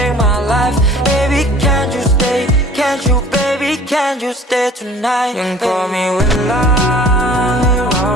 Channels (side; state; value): both; normal; correlation 0.49